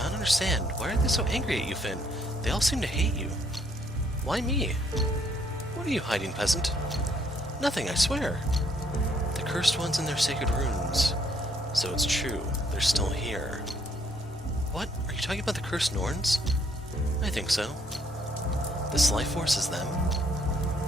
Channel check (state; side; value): normal; both; correlation 0.68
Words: don't understand. Why are they so angry at you, Finn? They all seem to hate you. Why me? What are you hiding, peasant? Nothing, I swear. The cursed ones in their sacred runes. So it's true. They're still here. What? Are you talking about the cursed Norns? I think so. This life force is them.